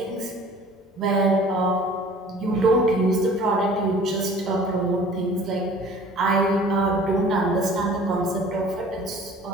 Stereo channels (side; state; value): both; normal; correlation 0.48